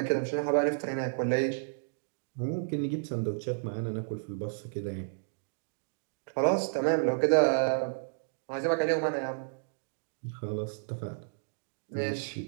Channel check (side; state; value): left; silent; digital silence